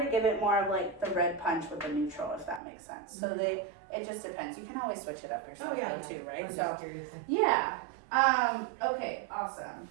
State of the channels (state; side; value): drops out; left; at 2.6 s